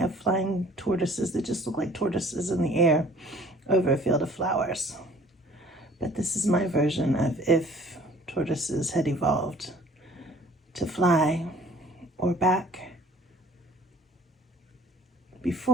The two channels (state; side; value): normal; both; correlation 0.53